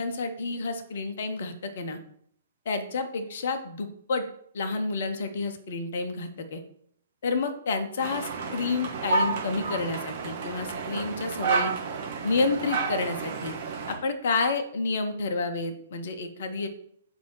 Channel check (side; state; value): both; inverted; correlation -0.63